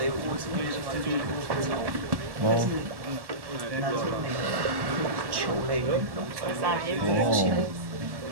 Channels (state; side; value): late; left; 1.1 ms